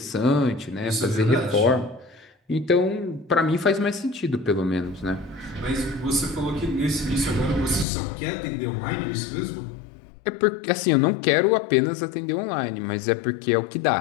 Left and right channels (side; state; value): right; drops out; at 7.9 s